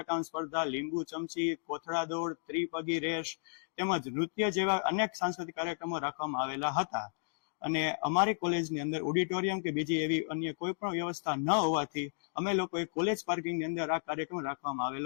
સ્પર્ધા, લીંબુ ચમચી, કોથળા દોડ, ત્રિપગી રેસ તેમજ નૃત્ય જેવા અનેક સાંસ્કૃતિક કાર્યક્રમો રાખવામાં આવેલા હતા. અને અમારી કોલેજની અંદર ઓડિટોરિયમ કે બીજી એવી અન્ય કોઈ પણ વ્યવસ્થા ન હોવાથી અમે લોકોએ કોલેજ પાર્કિંગની અંદર આ કાર્યક્રમ રાખવામાં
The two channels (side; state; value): right; silent; digital silence